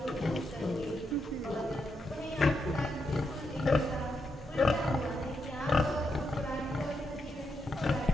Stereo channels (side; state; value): both; normal; correlation 0.83